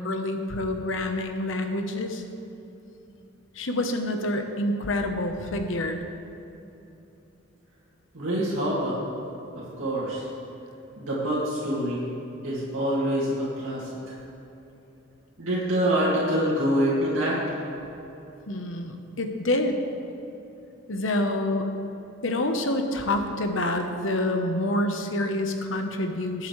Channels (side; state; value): both; normal; correlation 0.32